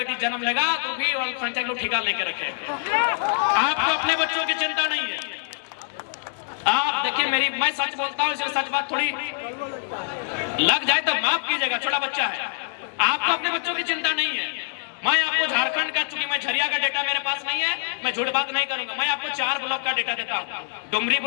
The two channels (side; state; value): right; silent; digital silence